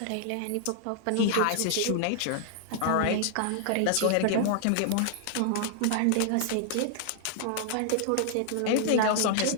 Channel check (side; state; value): both; different; correlation 0.00